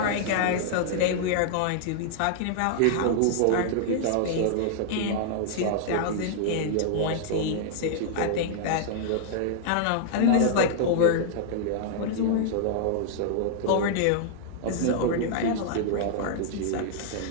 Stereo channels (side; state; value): both; different; correlation -0.01